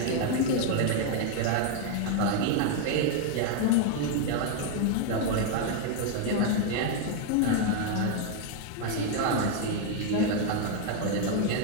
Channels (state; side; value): different; both; correlation 0.00